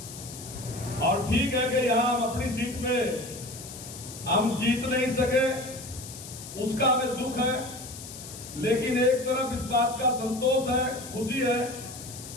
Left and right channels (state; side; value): noise; left; hiss, 13 dB below the sound